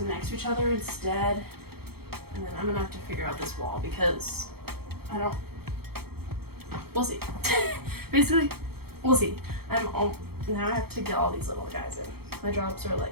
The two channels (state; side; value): late; left; 0.95 ms